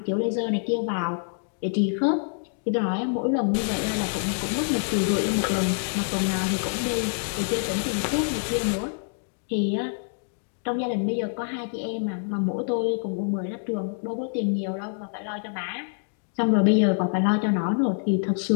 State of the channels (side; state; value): right; silent; digital silence